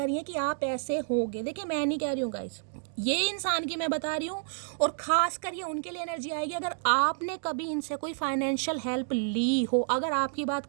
हैं कि आप ऐसे होगे। देखिए मैं नहीं कह रही हूँ गाइस, ये इंसान की मैं बता रही हूँ, और ख़ास कर ये उनके लिए एनर्जी आएगी अगर आपने कभी इनसे कोई फाइनेंशियल हेल्प ली हो। अगर आपकी बात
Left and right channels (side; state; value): left; silent; digital silence